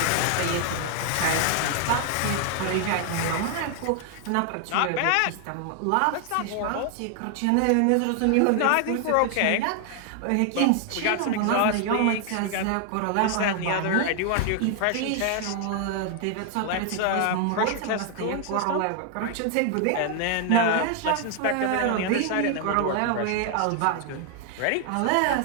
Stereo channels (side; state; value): both; different; correlation 0.00